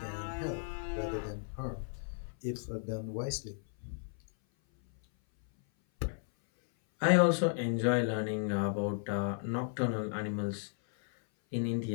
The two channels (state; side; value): silent; right; 55 dB below the other